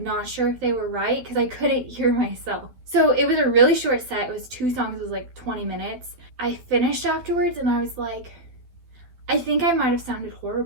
sure if they were right because I couldn't hear myself. So it was a really short set. It was 2 songs, it was like 20 minutes. I finished afterwards and I was like, I think I might have sounded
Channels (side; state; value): left; late; 12 ms